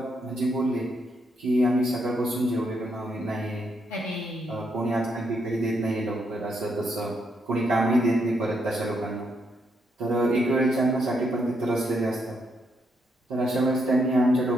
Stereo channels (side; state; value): both; normal; correlation 0.77